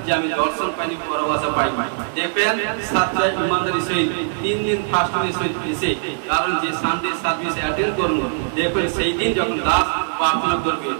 যে আমি দর্শন পাইনি পরভাষা পাই। দেখবেন সাতটায় ইমানদারির সহিত 3 দিন ফাস্টিংয়ের সহিত এসে কারণ যে সানডে সার্ভিস অ্যাটেন্ড করুন দেখবেন সেই দিন যখন দাস প্রার্থনা করবে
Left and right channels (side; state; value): left; silent; digital silence